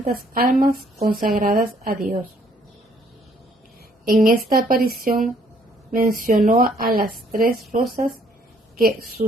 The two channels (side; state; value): both; normal; correlation 0.65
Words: almas consagradas a Dios. En esta aparición mencionó a las 3 rosas que